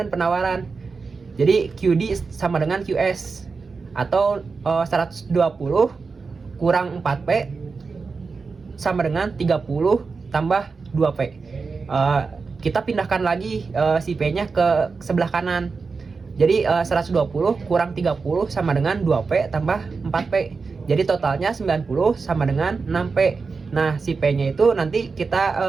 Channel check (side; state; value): left; quieter; 4.6 dB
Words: dan penawaran. Jadi QD sama dengan QS atau 120 kurang 4P sama dengan 30 tambah 2P. Kita pindahkan lagi si P-nya ke sebelah kanan. Jadi 120 kurang 30 sama dengan 2P tambah 4P. Jadi totalnya 90 sama dengan 6P. Nah, si P-nya itu nanti kita